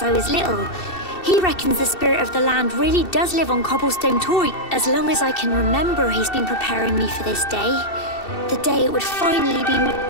I was little. He reckons the spirit of the land really does live on Cobblestone Tor. As long as I can remember, he's been preparing me for this day. The day it would finally be...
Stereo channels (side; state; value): right; late; 2.7 ms